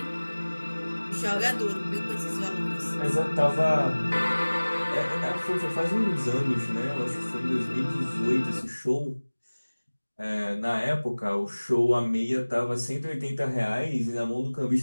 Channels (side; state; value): both; inverted; correlation -1.00